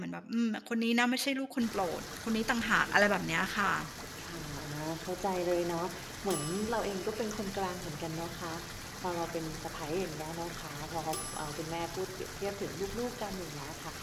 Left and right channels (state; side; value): identical; both; correlation 1.00